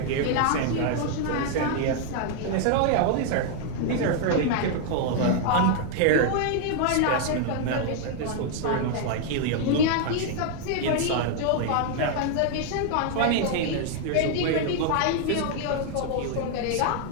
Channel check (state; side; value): different; both; correlation 0.00